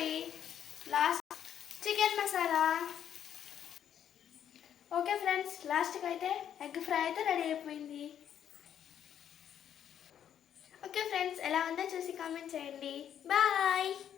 last chicken masala. Okay friends, లాస్ట్కి అయితే ఎగ్ ఫ్రై అయితే రెడీ అయిపోయింది. ఓకే ఫ్రెండ్స్, ఎలా ఉందో చూసి కామెంట్ చేయండి. బాయ్.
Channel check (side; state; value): right; quieter; 9.5 dB